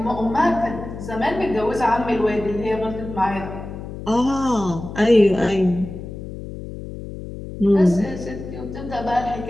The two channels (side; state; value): left; noise; hum, 10 dB below the sound